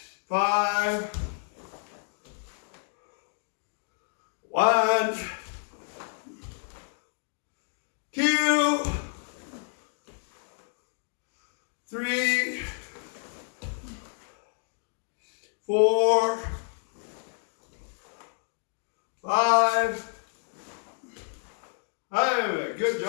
5, 1, 2, 3, 4, 5. Hey, good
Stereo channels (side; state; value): right; silent; 58 dB below the other